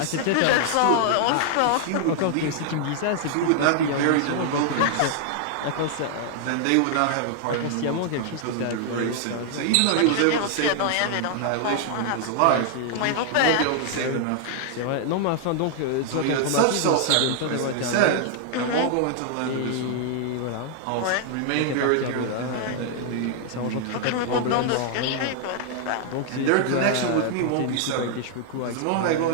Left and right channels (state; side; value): different; both; correlation 0.00